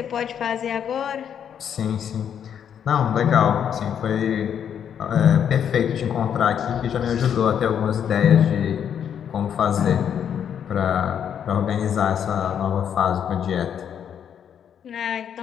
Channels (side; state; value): right; quieter; 8.6 dB